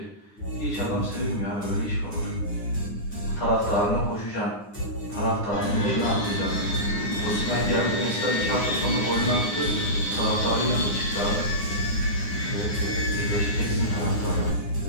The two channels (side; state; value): right; late; 9.8 ms